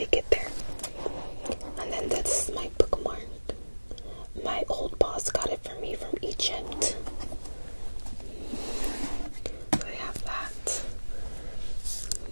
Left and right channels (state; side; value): inverted; both; correlation -1.00